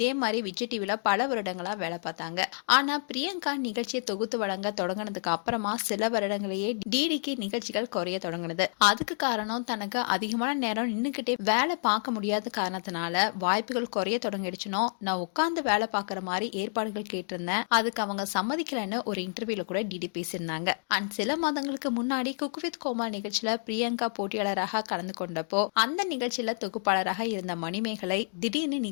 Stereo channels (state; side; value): silent; right; digital silence